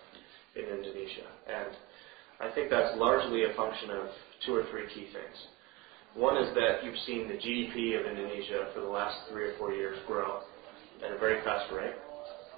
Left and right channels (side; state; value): left; quieter; 20.9 dB